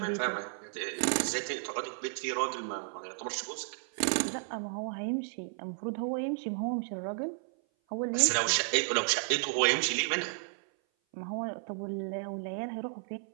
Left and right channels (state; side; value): silent; left; 56 dB below the other